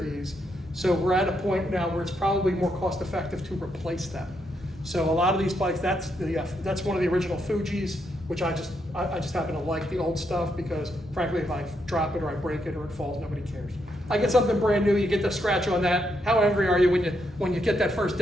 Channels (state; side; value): normal; both; correlation 0.79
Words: So we're at a point now where it's probably more cost effective to replace them. So a lot of these bikes, that's one of the original Fujis, which I just happen to like the old stuff because frankly, if I drop it or I break it or it falls, nobody cares. I get something brand new, you get the scratch on that. How angry are you when you get that first